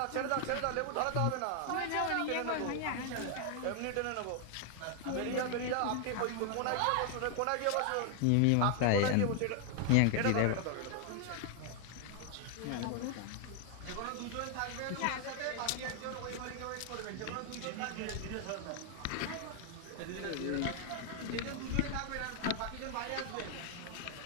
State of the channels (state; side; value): different; both; correlation 0.00